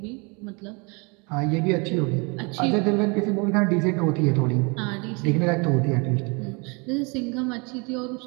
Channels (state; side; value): quieter; left; 30.9 dB